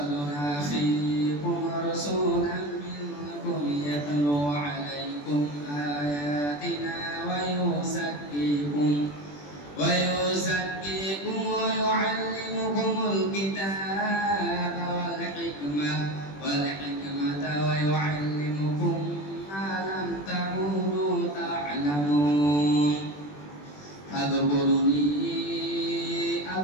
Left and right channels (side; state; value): right; late; 21 ms